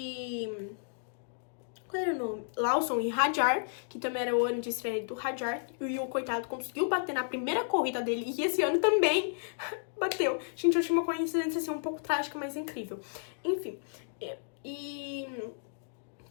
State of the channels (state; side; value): silent; right; digital silence